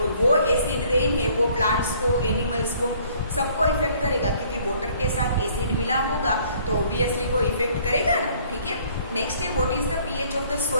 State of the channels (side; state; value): both; inverted; correlation -0.59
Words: वो एसिड रेन है वो प्लांट्स को, एनिमल्स को, सबको इफेक्ट करेगा, क्योंकि वाटर के साथ एसिड मिला होगा तो ऑब्वियसली वो इफेक्ट करेगा ना। ठीक है, नेक्स्ट है what is the pH of the